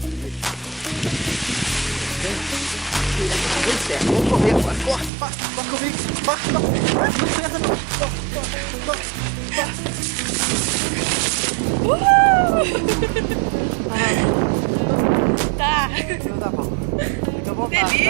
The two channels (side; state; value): left; drops out; at 5.1 s